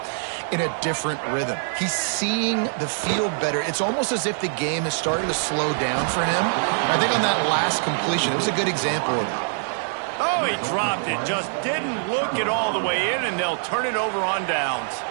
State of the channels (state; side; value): silent; left; digital silence